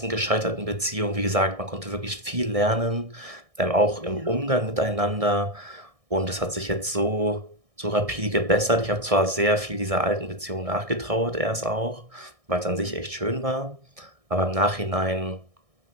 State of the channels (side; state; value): left; late; 1.6 ms